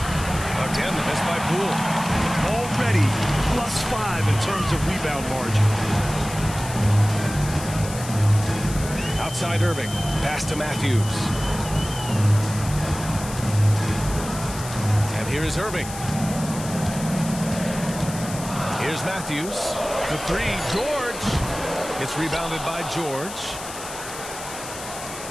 Again, the miss by Poole. Already +5 in terms of rebound margin. Outside Irving. Pass to Matthews. And here is Irving. Here's Matthews. The 3. George. It's rebounded by George.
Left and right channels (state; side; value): noise; left; hiss, 11 dB below the sound